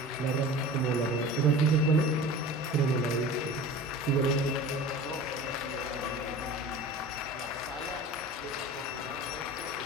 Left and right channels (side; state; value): both; normal; correlation 0.37